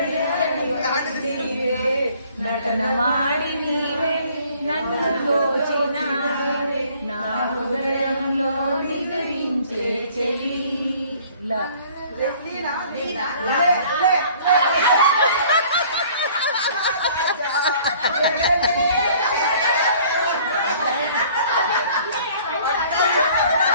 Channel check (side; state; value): both; inverted; correlation -0.55